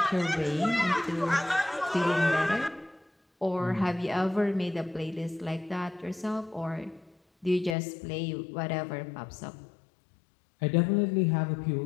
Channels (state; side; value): drops out; right; at 7.8 s